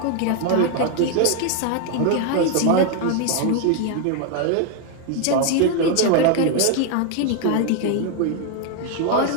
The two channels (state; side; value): different; both; correlation 0.00